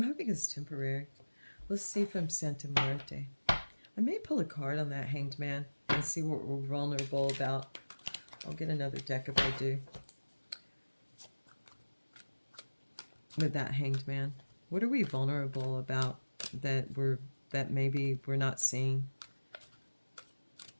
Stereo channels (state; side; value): inverted; both; correlation -1.00